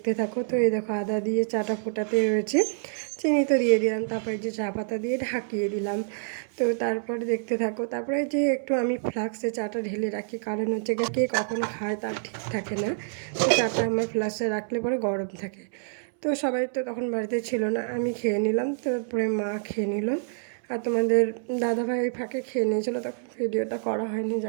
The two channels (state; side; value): silent; left; 60 dB below the other